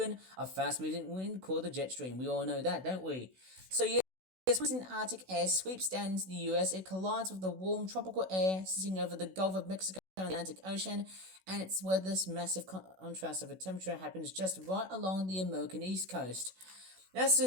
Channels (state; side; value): late; left; 16 ms